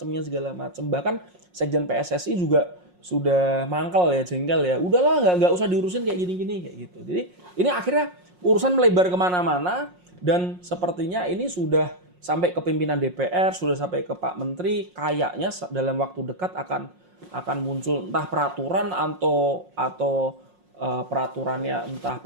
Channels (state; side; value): late; left; 5.6 ms